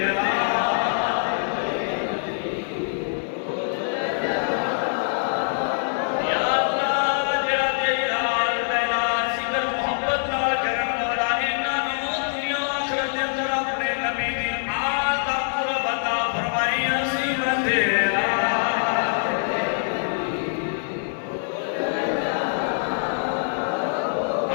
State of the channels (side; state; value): right; silent; digital silence